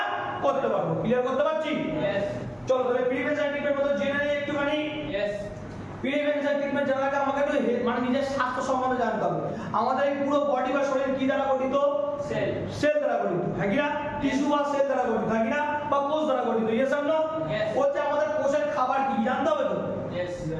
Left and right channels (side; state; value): both; identical; correlation 1.00